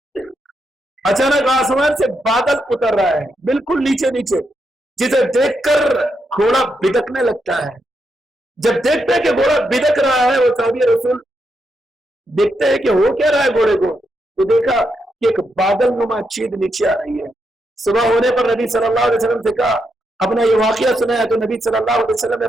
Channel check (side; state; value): both; normal; correlation 0.82